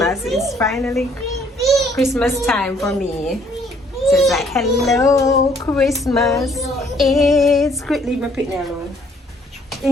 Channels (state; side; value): normal; both; correlation 0.63